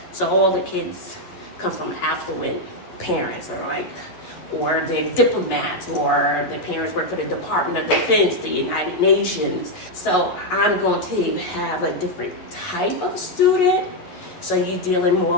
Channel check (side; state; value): right; late; 11 ms